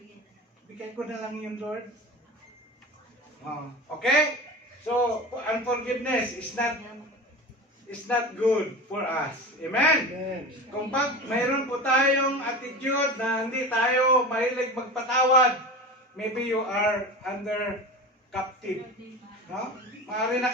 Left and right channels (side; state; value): both; normal; correlation 0.30